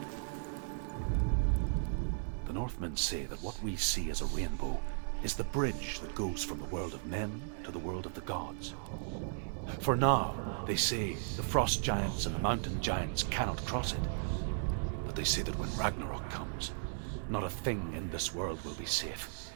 Northmen say that what we see as a rainbow is the bridge that goes from the world of men to the world of the gods. For now, they say, the frost giants and the mountain giants cannot cross it. But they say that when Ragnarok comes, not a thing in this world will be safe.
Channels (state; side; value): silent; left; 54 dB below the other